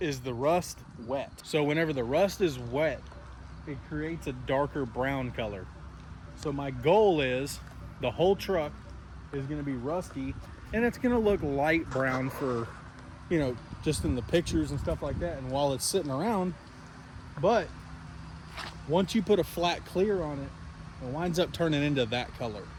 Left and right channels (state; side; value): identical; both; correlation 1.00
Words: is the rust wet. So whenever the rust is wet, it creates a darker brown color. So my goal is the whole truck is going to be rusty, and it's going to look light brown for, you know, just in the pictures and stuff like that and while it's sitting around. But once you put a flat clear on it, it winds up turning into that color,